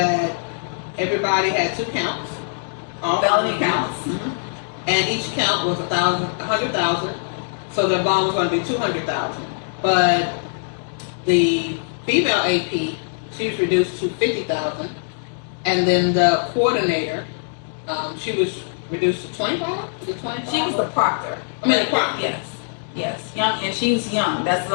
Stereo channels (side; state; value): right; silent; digital silence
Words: everybody had 2 counts, all felony counts, and each count was $100,000. So the bond was going to be $200,000. But the female AP, she was reduced to $50,000, and then the coordinator, she was reduced to $25,000. She was the proctor. The proctor. Yes. Yes, young, and she's young. That's